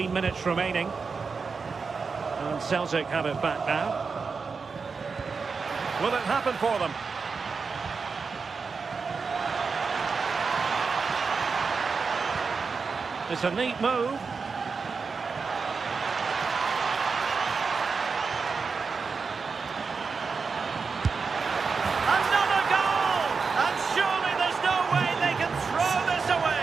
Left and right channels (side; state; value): left; quieter; 5.0 dB